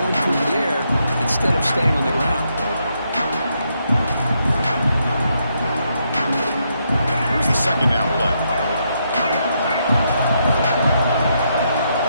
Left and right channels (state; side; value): inverted; both; correlation -0.78